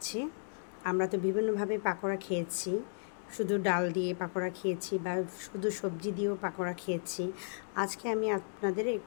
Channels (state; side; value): silent; right; digital silence